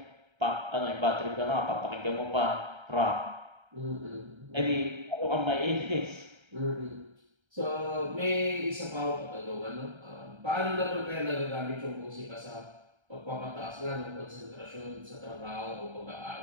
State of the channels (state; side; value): late; left; 1.3 ms